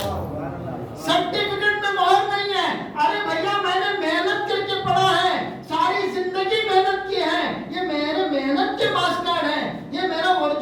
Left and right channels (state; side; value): identical; both; correlation 1.00